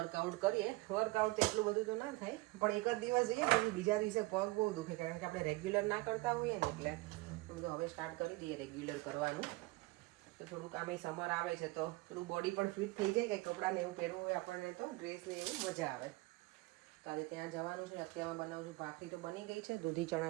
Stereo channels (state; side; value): quieter; left; 22.1 dB